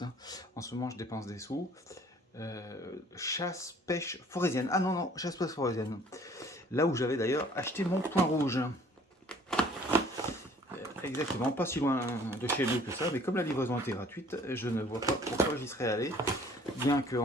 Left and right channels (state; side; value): normal; both; correlation 0.55